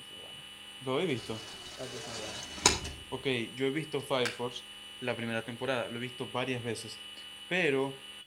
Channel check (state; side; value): identical; both; correlation 1.00